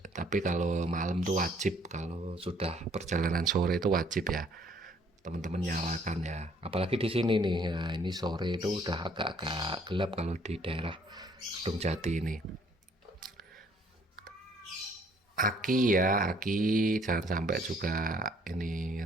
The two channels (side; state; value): both; normal; correlation 0.62